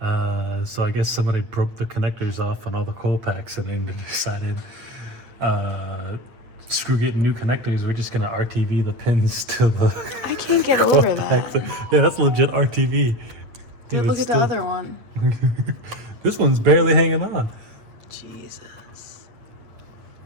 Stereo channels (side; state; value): left; late; 8.5 ms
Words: So I guess somebody broke the connectors off on all the coil packs and then decided, screw getting new connectors, we're just gonna RTV the pins to the I can't get over that. Yeah, that's legit RTV. Dude, look at the other one. This one's barely hanging on. Jesus.